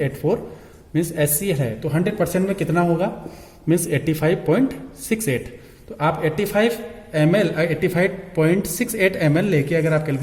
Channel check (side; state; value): both; identical; correlation 1.00